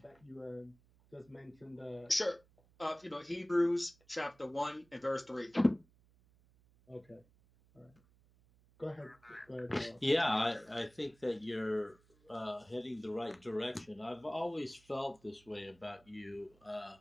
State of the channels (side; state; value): right; noise; hum, 30 dB below the sound